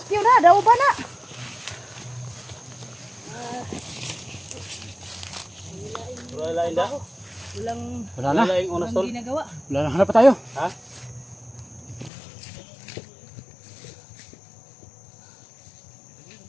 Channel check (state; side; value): drops out; right; at 12.1 s